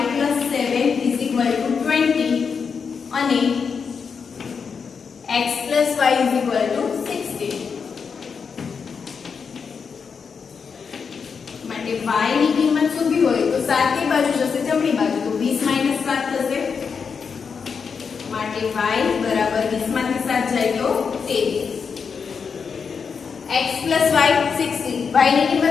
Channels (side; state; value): right; quieter; 5.9 dB